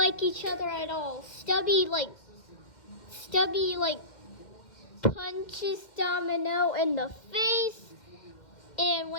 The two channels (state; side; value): late; right; 2.1 ms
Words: each other at all. Stubby punches Domino in the face. And